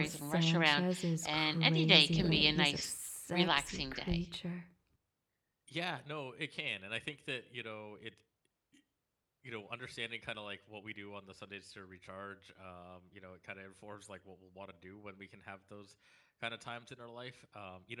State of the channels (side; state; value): both; identical; correlation 1.00